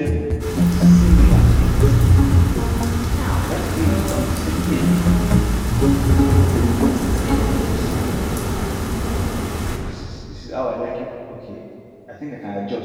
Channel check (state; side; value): identical; both; correlation 1.00